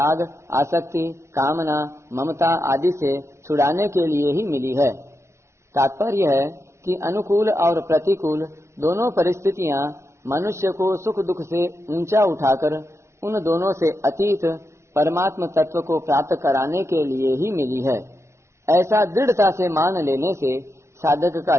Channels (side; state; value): left; late; 0.13 ms